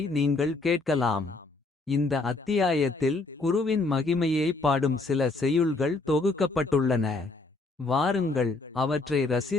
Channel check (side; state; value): right; quieter; 3.4 dB